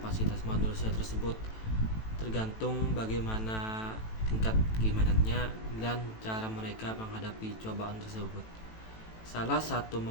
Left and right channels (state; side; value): late; right; 18 ms